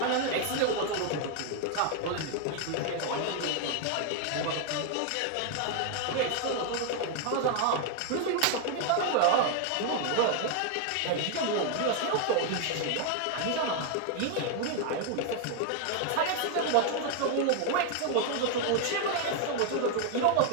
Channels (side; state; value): both; different; correlation 0.00